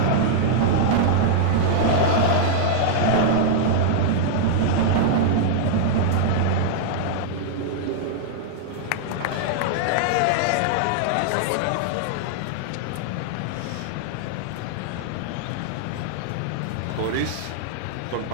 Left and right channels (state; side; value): different; both; correlation -0.01